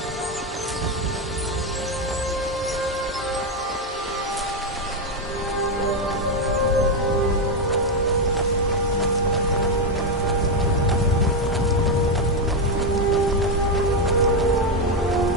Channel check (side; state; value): both; normal; correlation 0.06